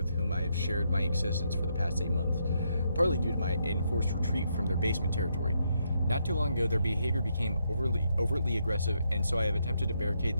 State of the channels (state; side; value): inverted; both; correlation -0.78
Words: whom I have shared my existence for the past 8 months, partly due to my enforced retreat from their basement territory. Not too long ago, their behavior became overtly aggressive, and so I have attempted to barricade